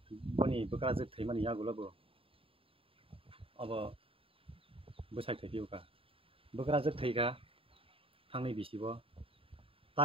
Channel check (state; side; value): late; left; 0.27 ms